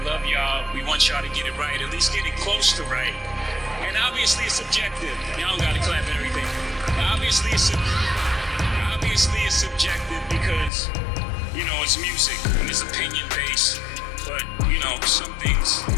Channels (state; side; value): drops out; right; at 10.7 s